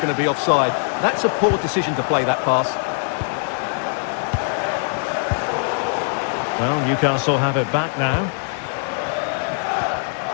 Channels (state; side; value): silent; right; digital silence